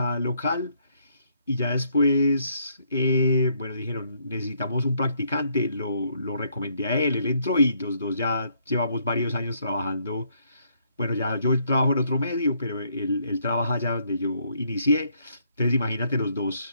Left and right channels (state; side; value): inverted; both; correlation -0.70